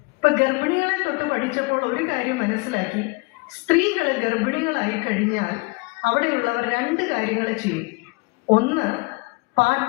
ഇപ്പൊ ഗർഭിണികളെ തൊട്ട് പഠിച്ചപ്പോൾ ഒരു കാര്യം മനസ്സിലാക്കി, സ്ത്രീകൾ ഗർഭിണികളായി കഴിഞ്ഞാൽ അവിടെയുള്ളവർ 2 കാര്യങ്ങൾ ചെയ്യും. 1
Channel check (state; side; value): quieter; right; 27.9 dB